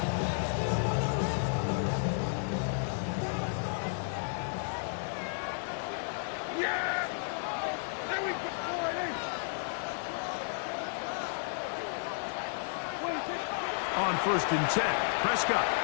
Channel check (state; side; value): silent; right; 56 dB below the other